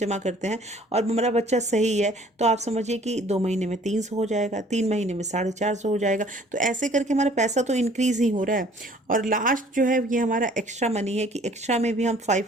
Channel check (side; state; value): both; normal; correlation 0.55